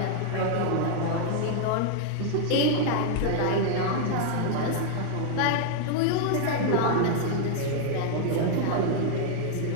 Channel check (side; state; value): both; different; correlation 0.00